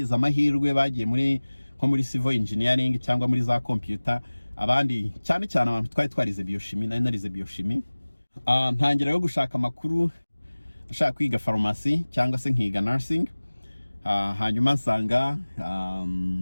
amahirwe bagiye muri nko muri civil engineering cyangwa muri za computer, abandi cyane cyane abantu twarize biochimie, narize biochimie. Ntangira yo gushaka amakuru, nshaka kwiga pharmacy cyangwa se nkiga nursing. Hanyuma nsanga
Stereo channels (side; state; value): both; inverted; correlation -1.00